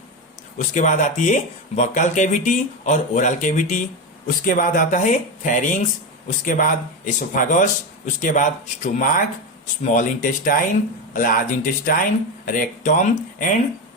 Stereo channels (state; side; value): normal; both; correlation 0.16